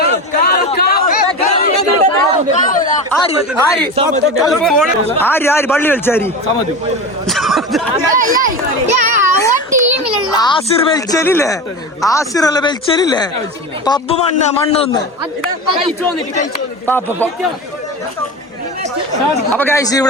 ആര് പള്ളി കളിച്ചാരി ആസിർ വലിച്ചലില്ലേ? ആസിറല്ല വലിച്ചലില്ലേ? പബ്ബ് മണ്ണൊന്ന്. അപ്പൊ ഗൈസ്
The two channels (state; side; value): normal; both; correlation 0.26